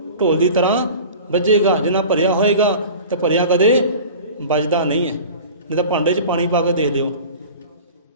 ਢੋਲ ਦੀ ਤਰ੍ਹਾਂ ਵੱਜੇਗਾ, ਜਿੰਨਾ ਭਰਿਆ ਹੋਏਗਾ ਤਾਂ ਭਰਿਆ ਕਦੇ ਵੱਜਦਾ ਨਹੀਂ ਹੈ। ਨਹੀਂ ਤਾਂ ਭਾਂਡੇ 'ਚ ਪਾਣੀ ਪਾ ਕੇ ਦੇਖ ਲਿਓ,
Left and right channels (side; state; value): both; inverted; correlation -0.39